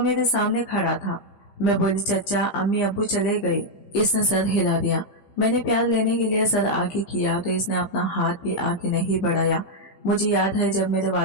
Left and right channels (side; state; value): right; late; 15 ms